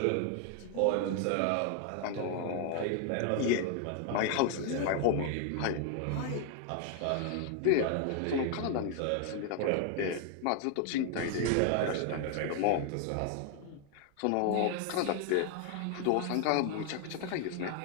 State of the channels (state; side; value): different; both; correlation 0.00